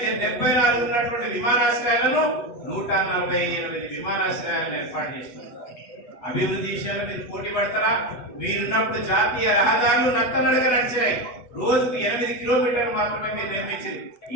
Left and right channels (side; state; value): right; late; 8.1 ms